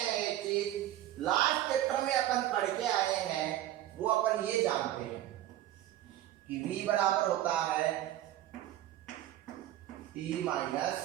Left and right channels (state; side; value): quieter; left; 13.5 dB